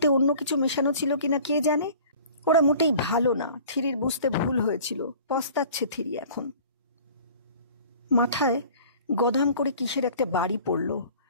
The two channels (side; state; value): both; inverted; correlation -0.47